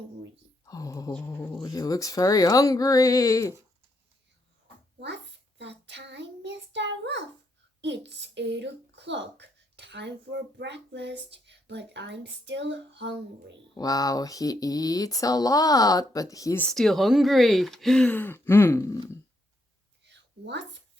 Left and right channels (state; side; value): normal; both; correlation 0.78